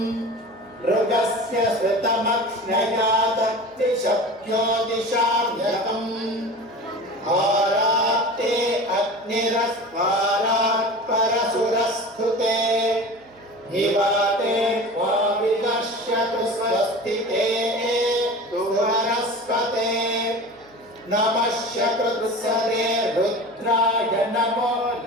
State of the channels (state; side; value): noise; right; hum, 30 dB below the sound